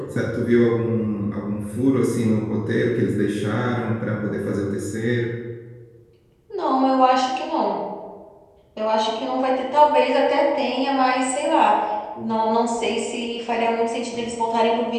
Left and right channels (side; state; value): both; identical; correlation 1.00